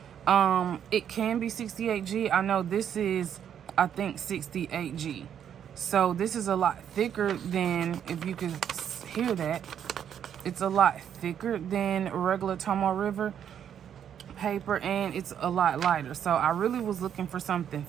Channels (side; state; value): left; quieter; 9.0 dB